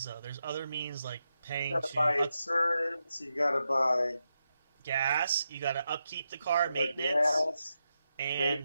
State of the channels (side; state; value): both; inverted; correlation -0.87